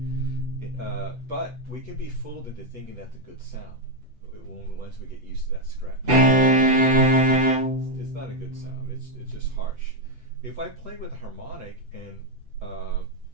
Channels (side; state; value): left; late; 8.0 ms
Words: But we can be fooled into thinking that's a good sound once we get used to that scratch. It's not a good sound. It's just harsh. If I play with a harmonic and